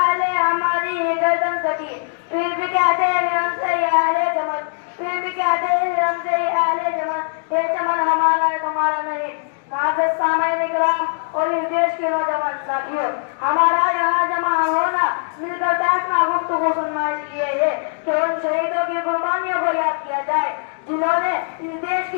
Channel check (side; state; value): right; silent; digital silence